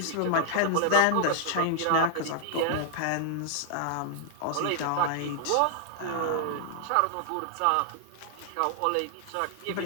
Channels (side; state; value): both; different; correlation 0.00